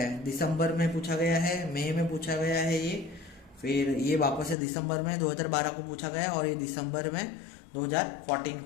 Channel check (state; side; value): drops out; right; at 4.5 s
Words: है। दिसंबर में पूछा गया है, मई में पूछा गया है ये, फिर ये वापस से दिसंबर में 2012 को पूछा गया, और ये दिसंबर में 2014